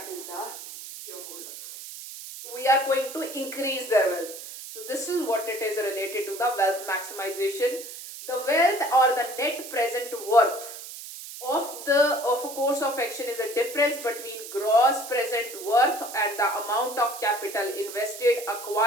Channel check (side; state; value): right; noise; hiss, 12 dB below the sound